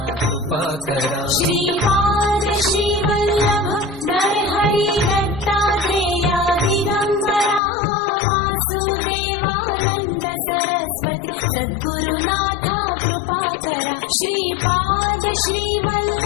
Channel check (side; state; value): right; drops out; at 7.6 s